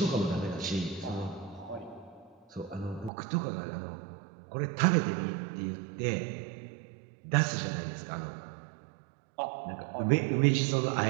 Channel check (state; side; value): drops out; left; at 3.1 s